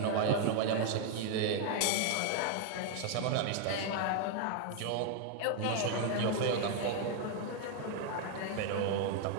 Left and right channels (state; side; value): different; both; correlation 0.01